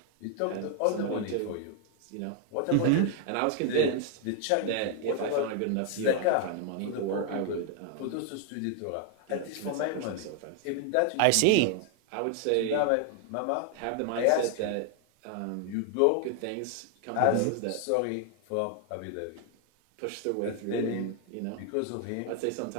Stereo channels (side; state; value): both; different; correlation 0.00